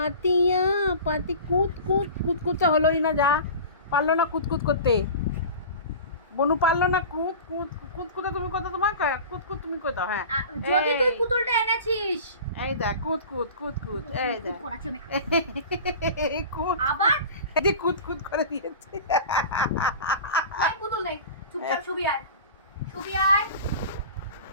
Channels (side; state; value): both; inverted; correlation -0.36